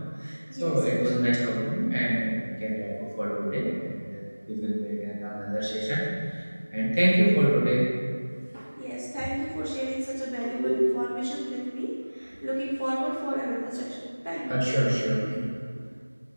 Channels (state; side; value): inverted; both; correlation -1.00